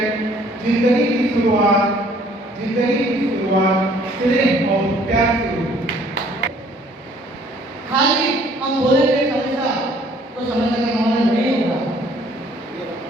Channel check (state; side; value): normal; both; correlation 0.59